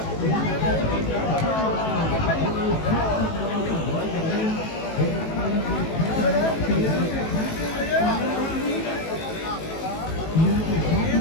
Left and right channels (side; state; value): right; late; 18 ms